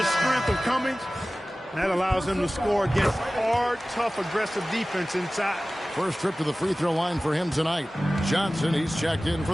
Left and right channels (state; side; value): normal; both; correlation 0.97